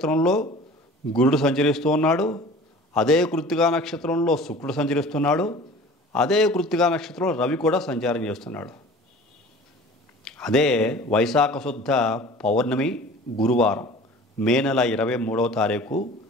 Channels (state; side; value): normal; both; correlation 0.43